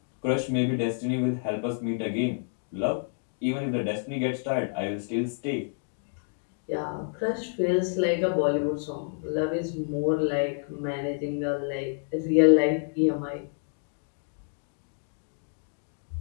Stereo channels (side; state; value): right; silent; digital silence